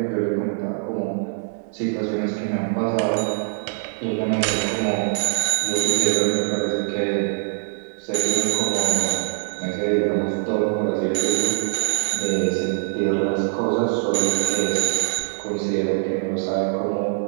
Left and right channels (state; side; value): silent; left; 63 dB below the other